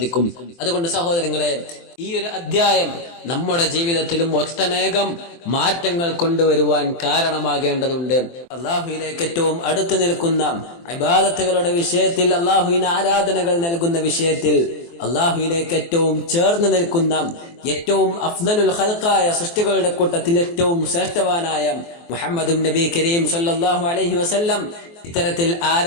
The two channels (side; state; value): right; late; 24 ms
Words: അതുകൊണ്ട് സഹോദരങ്ങളെ, ഈ ഒരു അധ്യായം നമ്മുടെ ജീവിതത്തിലും ഒട്ടനേകം മാറ്റങ്ങൾ കൊണ്ടുവരുവാൻ കാരണമാകേണ്ടതുണ്ട്. അല്ലാഹുവിലേക്ക് ഏറ്റവും അടുത്ത് നിൽക്കുന്ന ഇബാദത്തുകളുടെ വിഷയത്തിൽ, അല്ലാഹുവിന് ആരാധനകൾ നൽകുന്ന വിഷയത്തിൽ, അല്ലാഹുവിലേക്ക് ഏറ്റവും ചേർന്ന് നിൽക്കുന്ന ഏറ്റവും അഫ്ദലുൽ ഖൽഖായ സൃഷ്ടികളുടെ കൂട്ടത്തിൽ ഏറ്റവും ശ്രേഷ്ഠവാനായ മുഹമ്മദുൻ നബി കരീം സല്ലല്ലാഹു അലൈഹി വസല്ലം ഇത്തരത്തിൽ